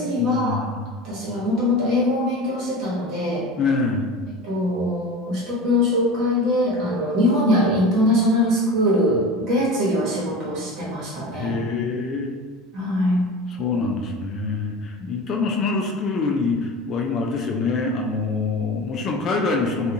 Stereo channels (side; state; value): both; normal; correlation 0.32